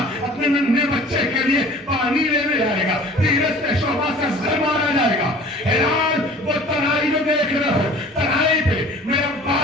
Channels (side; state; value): both; normal; correlation 0.46